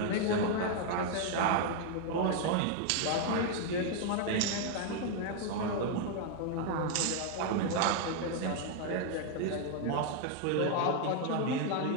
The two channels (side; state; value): both; different; correlation 0.00